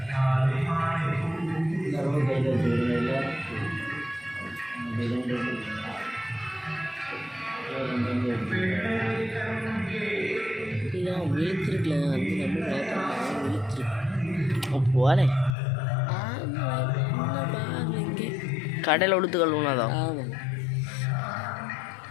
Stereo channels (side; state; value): right; drops out; at 15.6 s